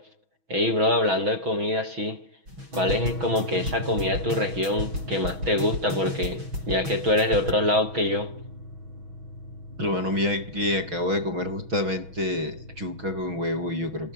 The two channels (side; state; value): left; late; 6.2 ms